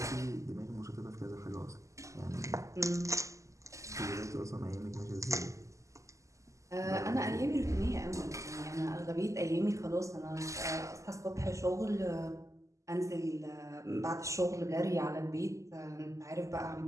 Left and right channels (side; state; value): left; late; 0.15 ms